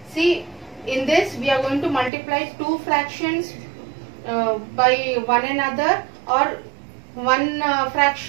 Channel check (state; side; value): drops out; left; at 2.1 s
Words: See, in this we are going to multiply two fractions by one another, or one